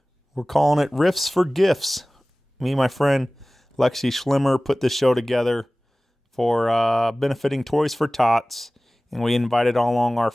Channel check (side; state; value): both; normal; correlation 0.98